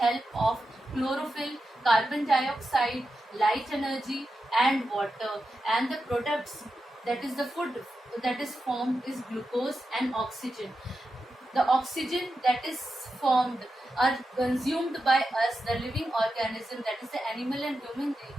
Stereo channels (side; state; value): both; normal; correlation 0.89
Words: of chlorophyll, carbon dioxide, light energy and water, and the products, that is the food that is formed, is glucose and oxygen. The oxygen that is formed are consumed by us, the living organism, that is the animal and human